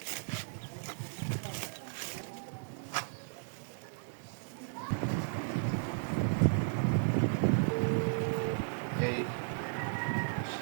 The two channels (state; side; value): silent; left; digital silence